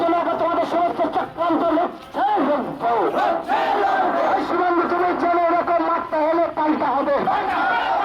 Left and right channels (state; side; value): identical; both; correlation 1.00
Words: জন্য তোমাদের সমস্ত চক্রান্ত লক্ষ্যে এই সীমান্ত তুমি জেনে এরকম মারতে হলে পাল্টা হবে।